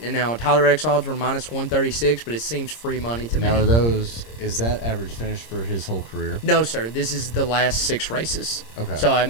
and now Tyler Reddick's odds were minus 136, but it seems free money to Now, me. is that average finish for his whole career? No, sir. This is the last 6 races. Okay. So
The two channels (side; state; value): right; late; 26 ms